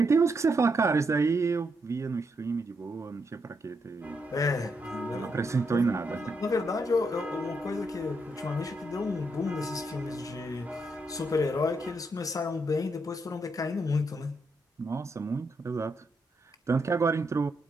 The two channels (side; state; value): both; normal; correlation 0.80